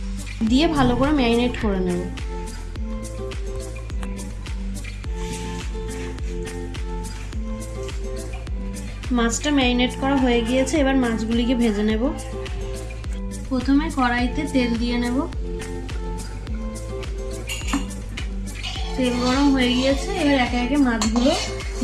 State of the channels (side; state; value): both; identical; correlation 1.00